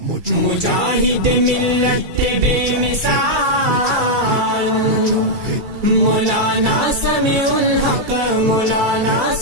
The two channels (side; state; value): left; late; 2.3 ms